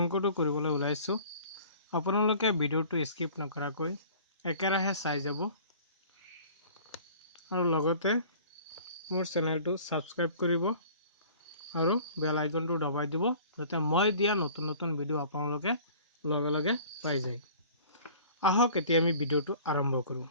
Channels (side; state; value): both; inverted; correlation -0.48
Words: কৰিবলৈ ওলাইছোঁ। আপোনালোকে ভিডিঅ'টো স্কিপ নকৰাকৈ একেৰাহে চাই যাব আৰু লগতে মোৰ চেনেলটো ছাবস্ক্ৰাইব কৰিব আৰু বেল আইকনটো দবাই দিব যাতে মই দিয়া নতুন ভিডিঅ' আপোনালোকে লগে লগে পাই যায়। আহক এতিয়া আমি ভিডিঅ'টো আৰম্ভ কৰোঁ।